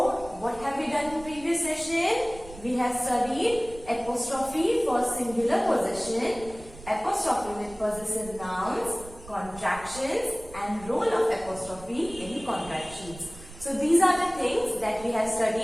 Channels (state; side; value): noise; right; rumble, 17 dB below the sound